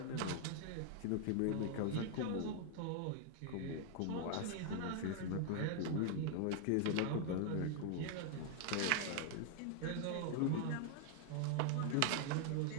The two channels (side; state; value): both; different; correlation 0.00